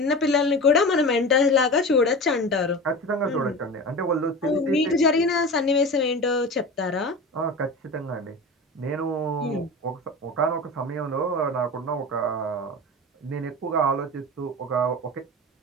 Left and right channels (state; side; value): normal; both; correlation 0.31